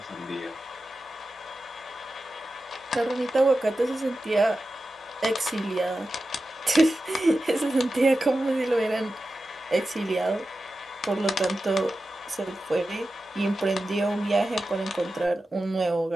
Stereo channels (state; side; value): normal; both; correlation 0.92